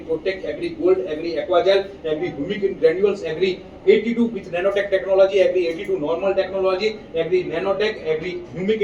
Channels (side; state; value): both; identical; correlation 1.00